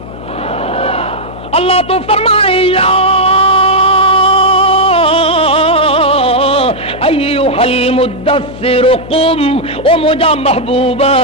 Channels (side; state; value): left; noise; hum, 14 dB below the sound